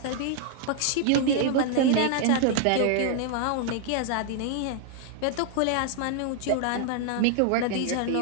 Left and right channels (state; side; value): different; both; correlation 0.00